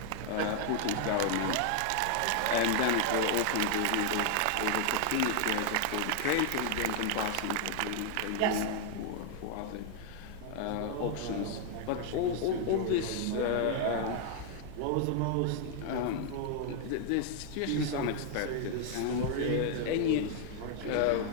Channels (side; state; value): both; different; correlation 0.00